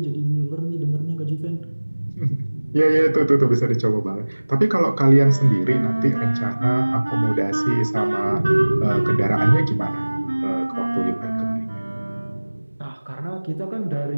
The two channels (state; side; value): inverted; both; correlation -1.00